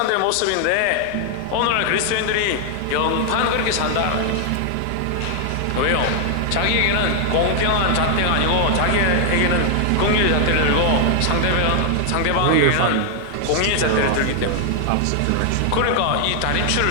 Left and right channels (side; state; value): both; different; correlation 0.00